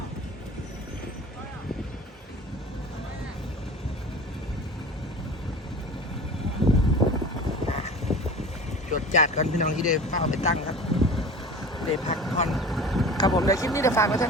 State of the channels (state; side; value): normal; both; correlation 0.38